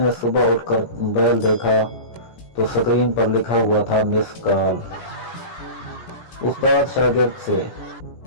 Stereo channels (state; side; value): late; right; 17 ms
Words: सुबह उठकर मोबाइल देखा तो स्क्रीन पर लिखा हुआ था मिस कॉल। उस्ताद शागिर्द से,